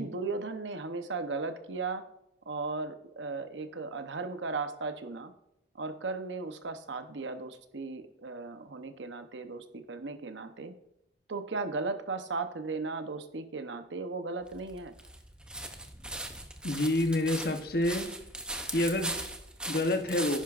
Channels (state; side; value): normal; both; correlation 0.25